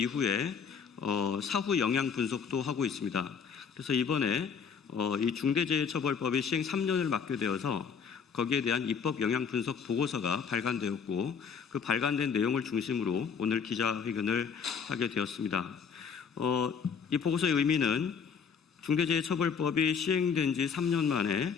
사후 영향 분석도 하고 있습니다. 그래서 이번에 이 중대재해처벌법이 시행 3년을 맞게 되어서 거기에 대한 입법 영향 분석 보고서가 발간되었고 그 발간된 내용을 중심으로 오늘 기자회견을 하게 되었습니다. 이 보고서의 의미는 중대재해처벌법이 시행된 지 3년 만에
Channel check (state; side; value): quieter; right; 6.5 dB